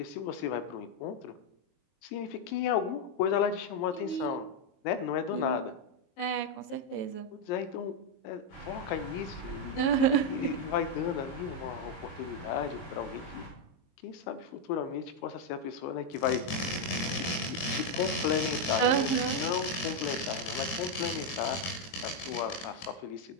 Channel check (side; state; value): right; late; 23 ms